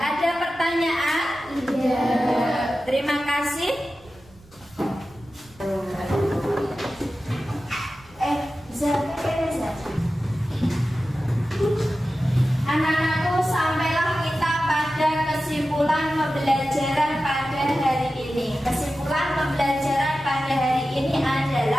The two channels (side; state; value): right; noise; rumble, 26 dB below the sound